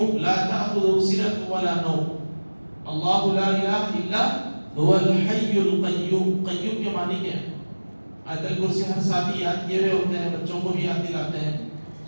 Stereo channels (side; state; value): both; inverted; correlation -1.00